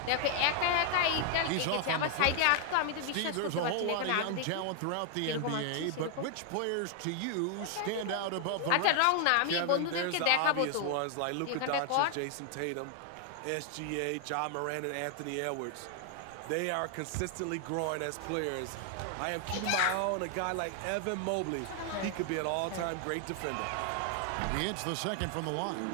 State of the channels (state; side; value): different; both; correlation 0.00